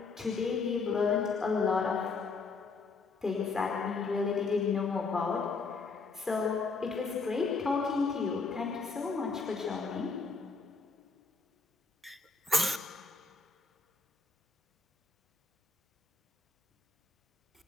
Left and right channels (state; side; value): quieter; right; 4.4 dB